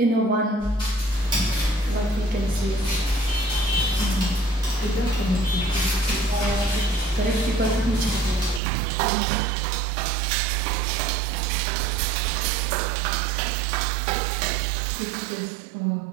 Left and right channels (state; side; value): drops out; left; at 8.6 s